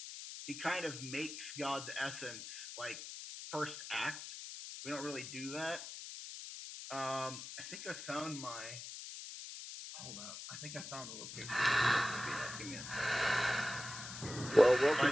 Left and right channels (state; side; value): noise; left; hiss, 9 dB below the sound